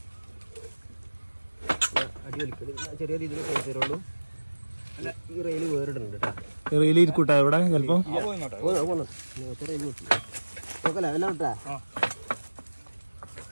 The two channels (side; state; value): both; inverted; correlation -1.00